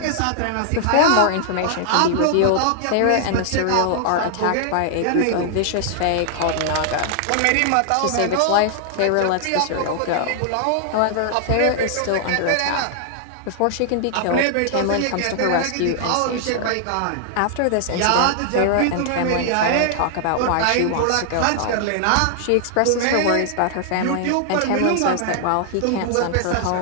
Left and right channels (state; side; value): different; both; correlation -0.01